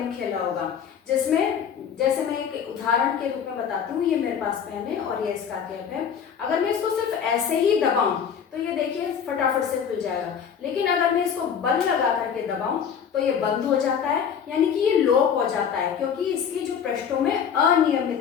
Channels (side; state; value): right; quieter; 7.6 dB